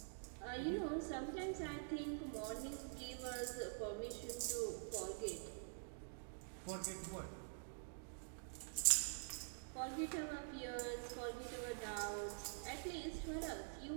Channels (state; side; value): silent; left; digital silence